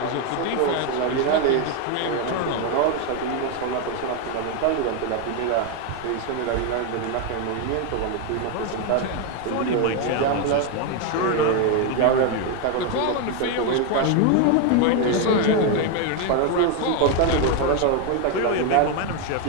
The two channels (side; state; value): both; different; correlation 0.01